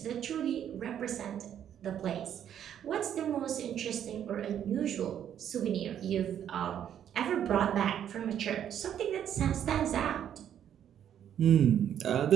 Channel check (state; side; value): quieter; left; 9.7 dB